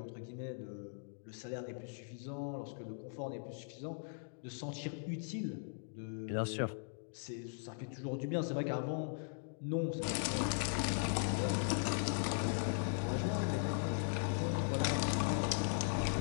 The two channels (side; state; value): right; silent; digital silence